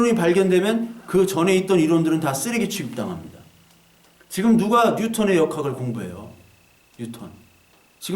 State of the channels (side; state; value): both; identical; correlation 1.00